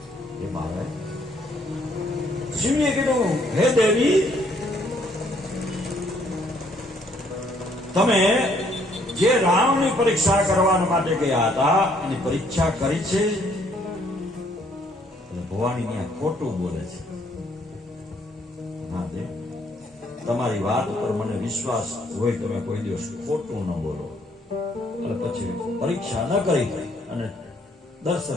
હે મહારાજ, શિવજીએ કીધું, હે દેવી, તમે જે રામની પરીક્ષા કરવા માટે ગયા હતા એની પરીક્ષા કરી છે. ભવાની ત્યાં ખોટું બોલે છે. તમારી વાત ઉપર મને વિશ્વાસ હોય, તમે કોઈ દિવસ ખોટું ન બોલો. અને પછી પરીક્ષા ન કરી અને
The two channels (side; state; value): both; normal; correlation 0.66